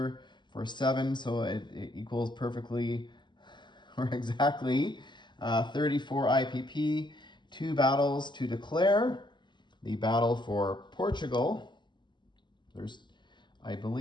for 7. So it equals perfectly or exactly 34 IPP. 2 battles to declare. The battle for Portugal. There's, I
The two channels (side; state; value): right; late; 0.22 ms